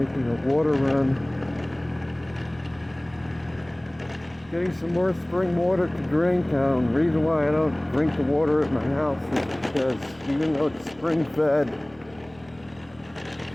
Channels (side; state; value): right; noise; hum, 27 dB below the sound